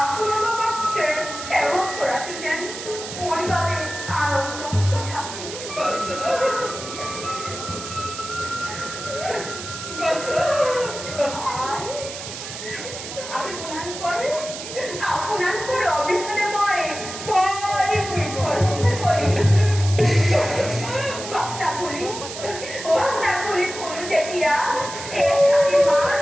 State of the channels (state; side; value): noise; right; hiss, 9 dB below the sound